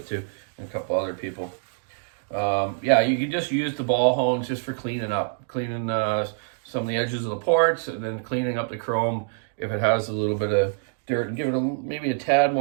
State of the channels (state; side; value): silent; left; digital silence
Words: too, and a couple other people. Yeah, you can just use the ball hones just for cleaning up, some of the edges of the ports, and then cleaning up the chrome if it has a little bit of dirt, and give it maybe a tad